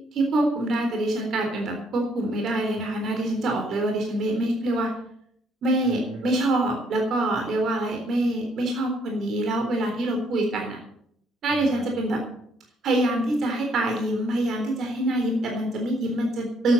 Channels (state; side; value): normal; both; correlation 0.68